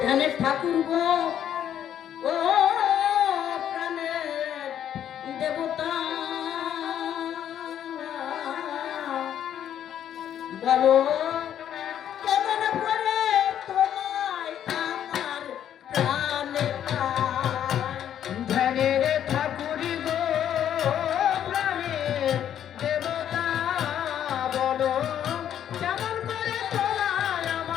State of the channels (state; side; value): quieter; right; 10.1 dB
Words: ধ্যানের ঠাকুর গো, ও প্রাণের দেবতা, বলো কেমন করে তোমায় আমার প্রাণে পায়। ধ্যানের ঠাকুর গো প্রাণের দেবতা, বলো কেমন করে তোমায়